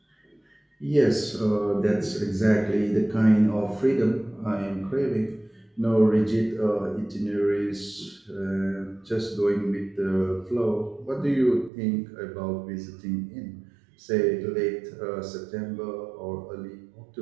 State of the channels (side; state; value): left; drops out; at 11.7 s